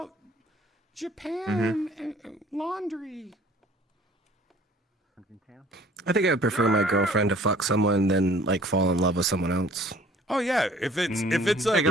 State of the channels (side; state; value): both; normal; correlation 0.53